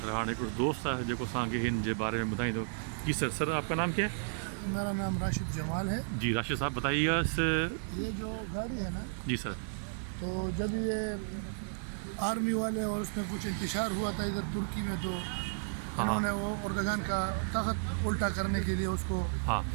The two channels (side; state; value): left; silent; 56 dB below the other